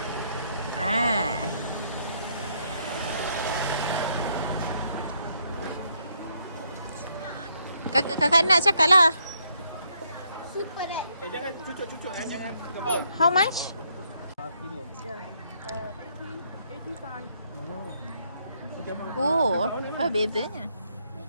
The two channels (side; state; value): both; inverted; correlation -0.73